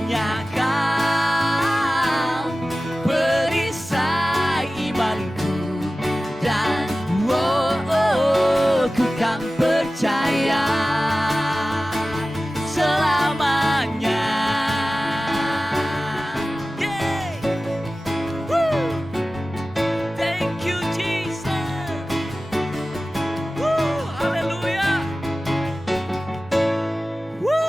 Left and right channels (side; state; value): both; normal; correlation 0.96